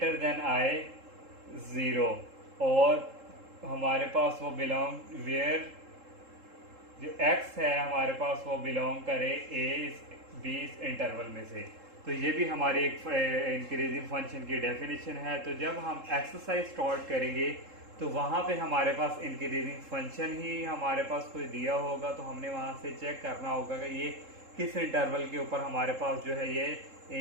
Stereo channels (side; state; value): left; late; 3.7 ms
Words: देन आए 0, और हमारे पास वो बिलोंग वेयर जो x है हमारे पास वो बिलोंग करे b इस इंटरवल में से। तो ये भी हमारी एक इंक्रीजिंग फंक्शन की डेफिनेशन है। तो जब हम एक्सरसाइज स्टार्ट करेंगे तो वहाँ पे हमारे पास इंक्रीजिंग फंक्शन ही हमारे पास कोई दिया होगा, तो हमने वहाँ से चेक करना होगा कि ये किस इंटरवल के ऊपर हमारे पास जो है ये